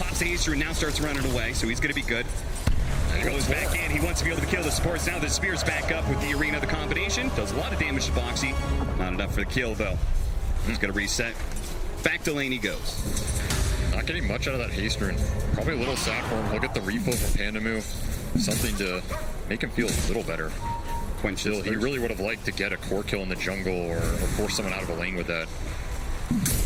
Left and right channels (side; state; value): both; identical; correlation 1.00